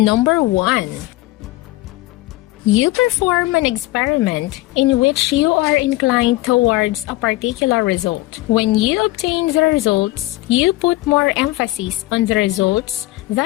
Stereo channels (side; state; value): right; quieter; 18.4 dB